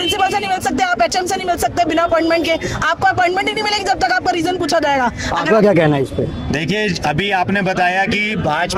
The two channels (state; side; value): identical; both; correlation 1.00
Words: से नहीं मिल सकते, आप एचएम से नहीं मिल सकते बिना अपॉइंटमेंट के। आपको अपॉइंटमेंट ही नहीं मिलेगी जब तक आपका रीजन पूछा जाएगा। आपका क्या कहना है इस पे? देखिए, अभी आपने बताया कि